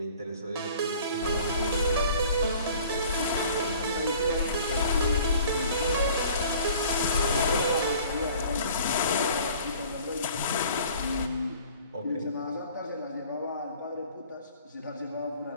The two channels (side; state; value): both; inverted; correlation -0.49